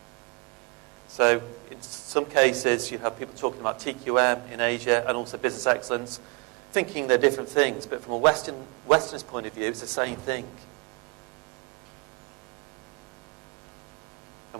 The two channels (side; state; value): left; quieter; 31.7 dB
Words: So in some cases, you have people talking about TQM in Asia and also business excellence, thinking they're different things, but from a Westernist point of view, it's the same thing. And